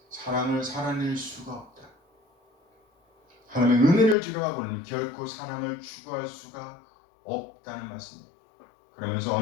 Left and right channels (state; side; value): drops out; right; at 4.2 s